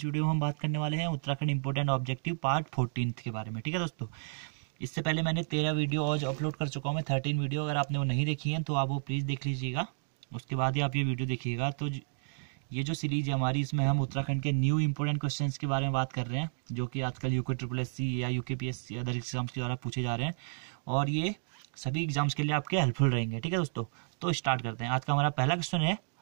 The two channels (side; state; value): left; silent; digital silence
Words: वीडियो में हम बात करने वाले हैं उत्तराखंड इंपोर्टेंट ऑब्जेक्टिव पार्ट 14 के बारे में। ठीक है दोस्तों, इससे पहले मैंने 13 वीडियो आज अपलोड कर चुका हूँ मैं, 13 वीडियो। अगर आपने वो नहीं देखी है तो आप वो प्लीज़ देख लीजिएगा, उसके बाद ही आप ये वीडियो देखिएगा। तो ये जो सीरीज है हमारी, इसमें हम उत्तराखंड के न्यू इंपोर्टेंट क्वेश्चंस के बारे में बात कर रहे हैं, जो कि आजकल UKSSC या UKPSC अदर एग्जाम्स के द्वारा पूछे जा रहे हैं, और ये सभी एग्जाम्स के लिए आपके हेल्पफुल रहेंगे। ठीक है दोस्तों, तो स्टार्ट करते हैं। आज का हमारा पहला क्वेश्चन है